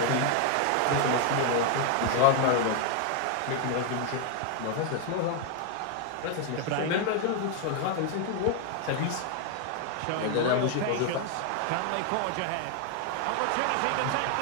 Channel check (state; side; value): different; both; correlation 0.00